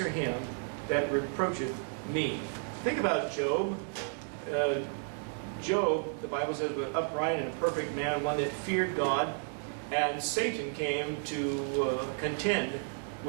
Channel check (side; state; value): left; silent; 56 dB below the other